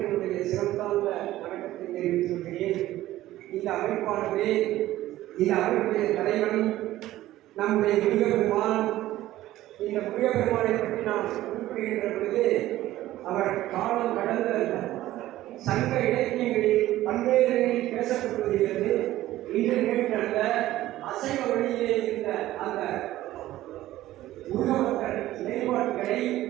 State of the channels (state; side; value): quieter; left; 15.1 dB